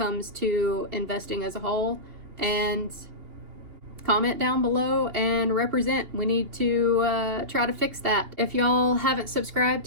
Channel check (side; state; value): left; late; 3.2 ms